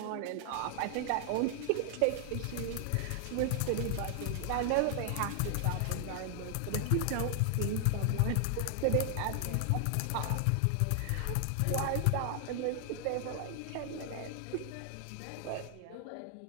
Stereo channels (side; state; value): both; different; correlation 0.00